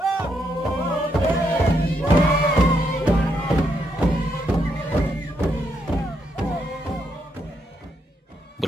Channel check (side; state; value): both; normal; correlation 0.77